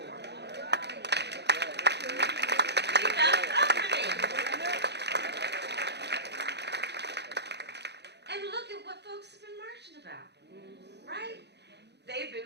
We got company. And look at what folks have been marching about, right? They've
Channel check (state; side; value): late; left; 0.49 ms